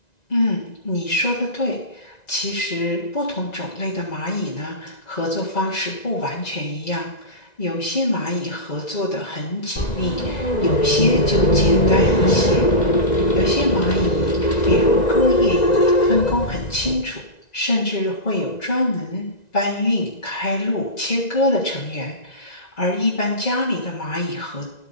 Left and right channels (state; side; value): late; right; 1.9 ms